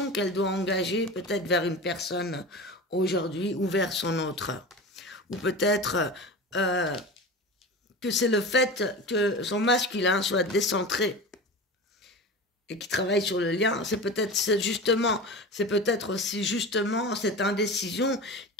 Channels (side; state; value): both; normal; correlation 0.30